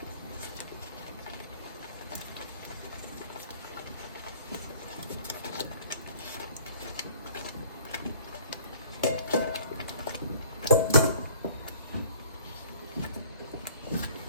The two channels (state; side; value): inverted; both; correlation -0.53